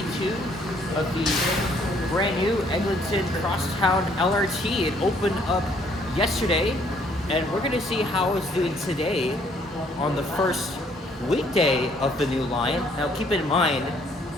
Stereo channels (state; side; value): normal; both; correlation 0.64